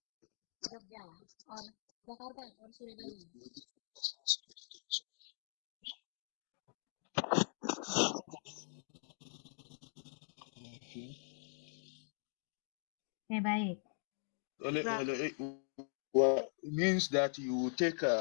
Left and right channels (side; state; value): right; silent; digital silence